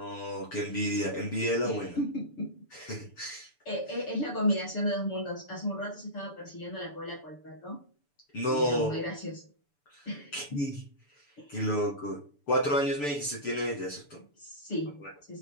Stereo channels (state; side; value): late; right; 6.9 ms